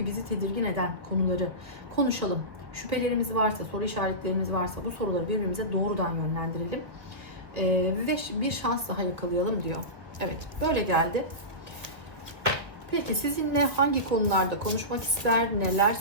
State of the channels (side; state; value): left; late; 1.8 ms